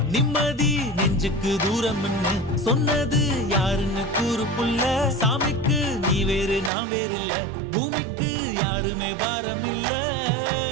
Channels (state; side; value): drops out; left; at 6.7 s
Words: நிம்மதி நெஞ்சுக்கு தூரம்னு சொன்னது யாருன்னு கூறு புள்ள சாமிக்கு நீ வேறு நான் வேறு இல்ல பூமிக்கு யாருமே பாரம் இல்ல